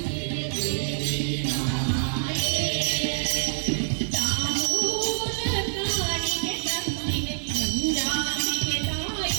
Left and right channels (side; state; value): left; silent; digital silence